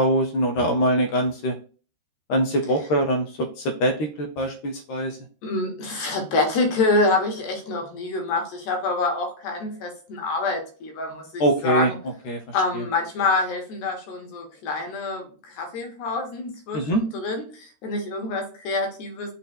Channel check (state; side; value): late; right; 13 ms